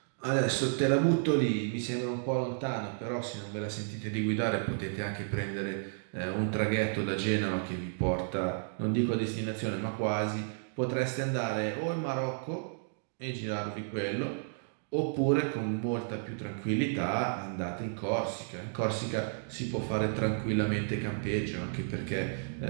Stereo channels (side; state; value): left; silent; digital silence